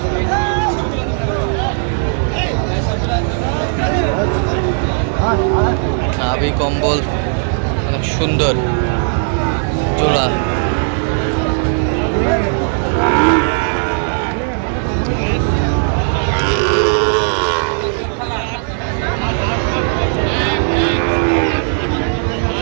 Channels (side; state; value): left; silent; 61 dB below the other